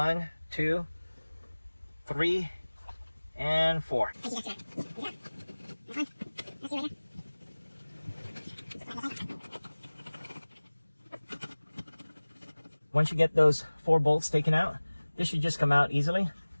2, 3, and 4. Once you get those 4 bolts taken out, this should just come out easily.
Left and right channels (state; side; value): inverted; both; correlation -1.00